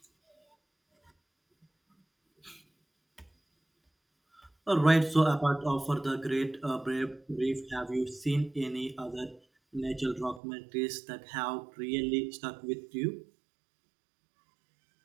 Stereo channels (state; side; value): drops out; left; at 10.4 s